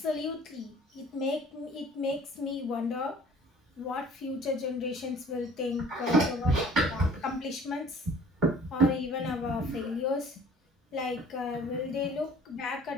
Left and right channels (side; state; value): both; normal; correlation 0.51